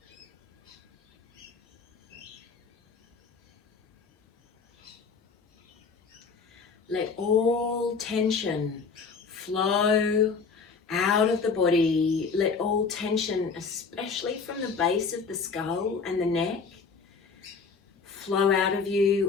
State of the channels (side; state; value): right; quieter; 5.1 dB